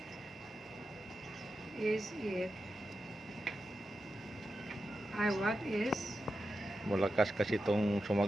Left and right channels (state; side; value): normal; both; correlation 0.90